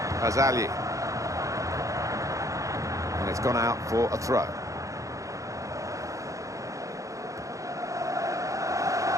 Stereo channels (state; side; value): late; left; 0.16 ms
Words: Azali. And it's gone out for a throw.